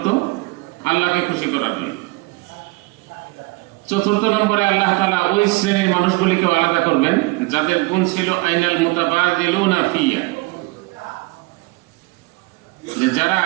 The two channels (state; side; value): quieter; left; 24.1 dB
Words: আল্লাহকে খুশি করার জন্য। চতুর্থ নম্বরে আল্লাহ তাআলা ওই শ্রেণীর মানুষগুলিকে আলাদা করবেন যাদের গুণ ছিল আইনাল মুতাবাদিলুনা ফিয়া, যে যারা